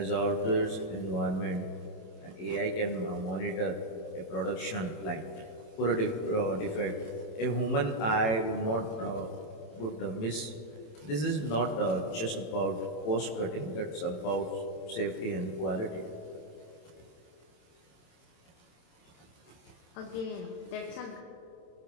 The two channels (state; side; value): late; right; 27 ms